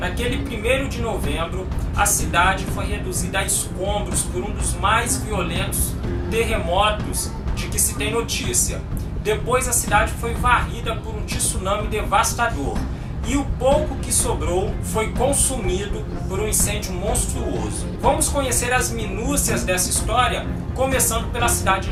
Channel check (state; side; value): identical; both; correlation 1.00